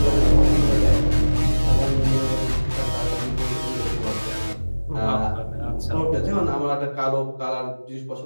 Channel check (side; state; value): both; inverted; correlation -1.00